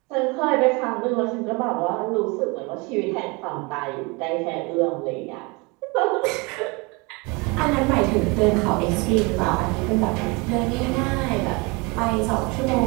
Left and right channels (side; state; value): left; quieter; 27.1 dB